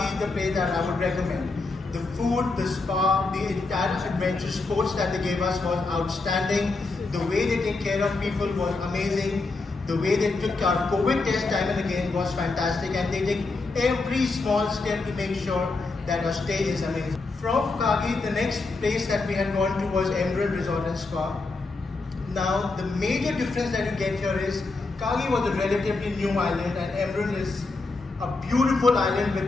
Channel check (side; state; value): right; quieter; 3.6 dB